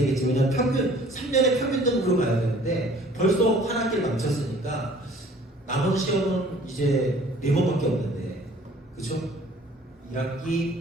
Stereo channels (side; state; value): both; normal; correlation 0.53